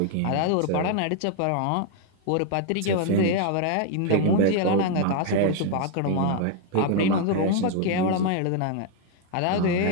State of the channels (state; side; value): different; both; correlation 0.01